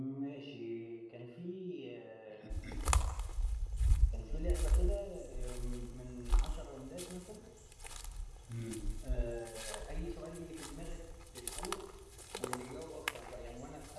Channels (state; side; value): identical; both; correlation 1.00